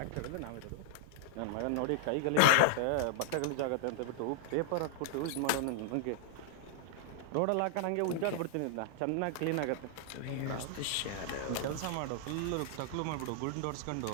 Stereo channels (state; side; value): different; both; correlation -0.01